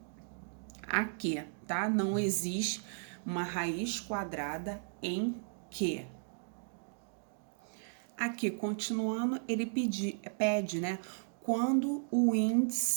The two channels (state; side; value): silent; left; digital silence